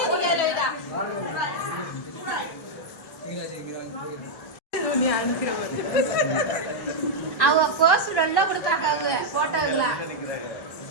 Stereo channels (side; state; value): right; late; 1.1 ms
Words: அவங்க கோசு நல்லா கொடுத்தாங்க. அவங்க போட்டோங்களா